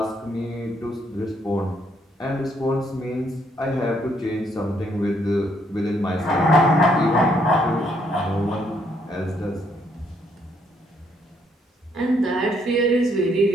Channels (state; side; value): normal; both; correlation 0.71